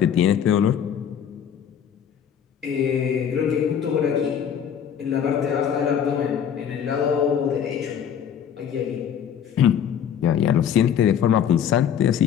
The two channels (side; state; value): right; quieter; 8.6 dB